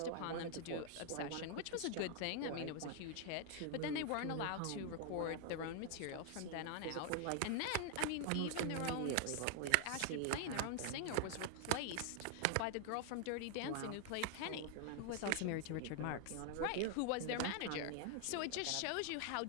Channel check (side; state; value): both; different; correlation 0.00